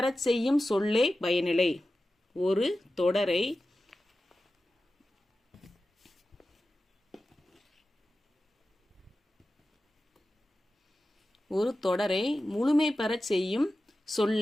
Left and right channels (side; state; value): both; normal; correlation 0.93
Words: செய்யும் சொல்லே பயனிலை. ஒரு தொடரை ஒரு தொடரை முழுமை பெறச் செய்யும்